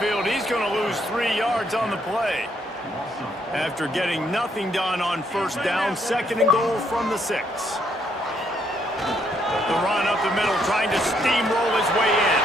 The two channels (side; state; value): both; normal; correlation 0.72